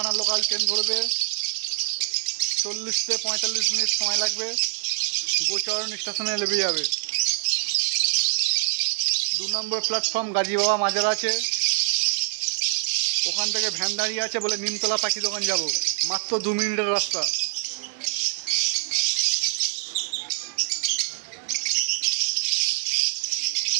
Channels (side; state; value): left; silent; 60 dB below the other